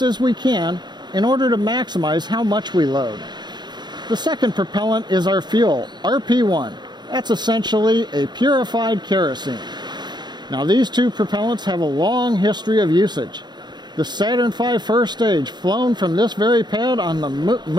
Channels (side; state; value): left; late; 0.21 ms